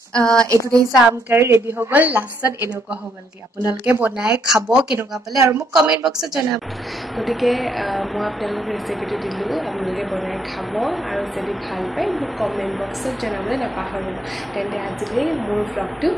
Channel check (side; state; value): both; normal; correlation 0.73